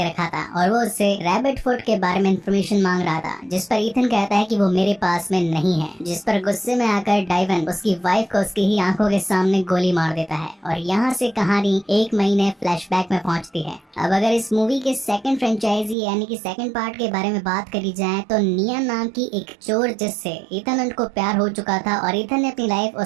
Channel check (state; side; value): drops out; left; at 16.0 s